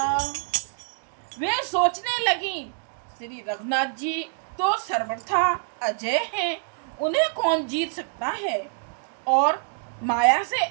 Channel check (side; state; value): left; silent; 61 dB below the other